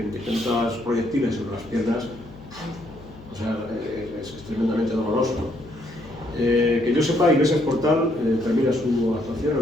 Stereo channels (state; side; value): noise; left; hum, 19 dB below the sound